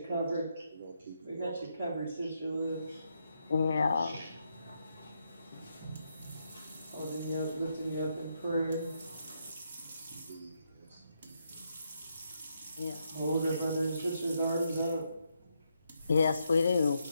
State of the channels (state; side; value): inverted; both; correlation -0.80